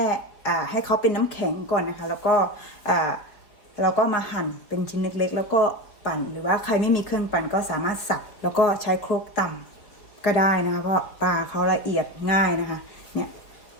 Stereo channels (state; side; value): late; right; 4.5 ms